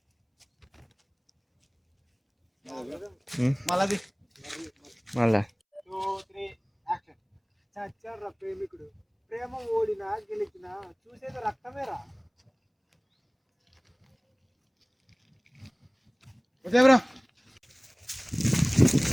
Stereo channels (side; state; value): both; identical; correlation 1.00